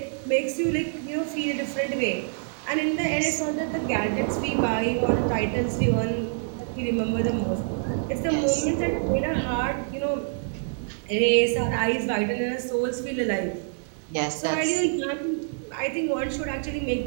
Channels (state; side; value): silent; left; 61 dB below the other